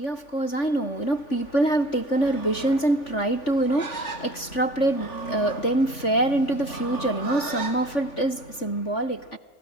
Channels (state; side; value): late; right; 3.5 ms